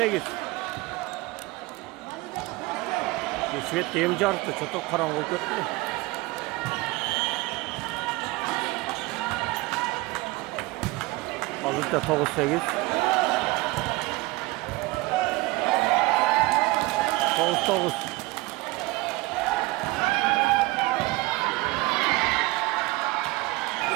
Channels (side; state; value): left; quieter; 21.7 dB